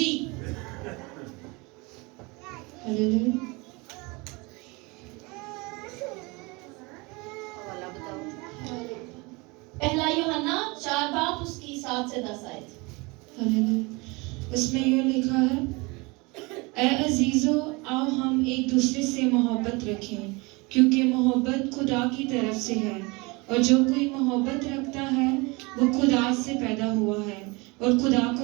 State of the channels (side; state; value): left; quieter; 26.3 dB